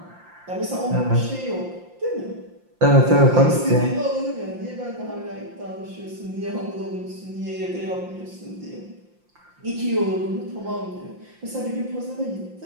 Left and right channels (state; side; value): late; left; 5.7 ms